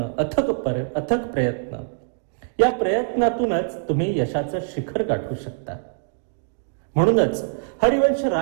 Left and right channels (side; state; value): left; silent; digital silence